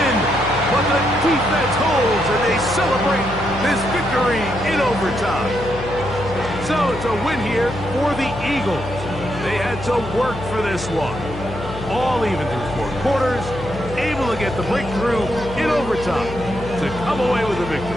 but the defense holds, and they celebrate this victory in overtime. So it's a win here for the Eagles. They had to work for this one. All even through 4 quarters, able to get the breakthrough in overtime to come away with a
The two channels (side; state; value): left; noise; hum, 11 dB below the sound